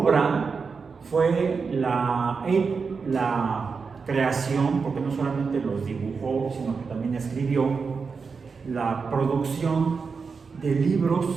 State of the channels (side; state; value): left; quieter; 5.1 dB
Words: fue la creación, porque no solamente los dibujó, sino que también escribió, la producción de libros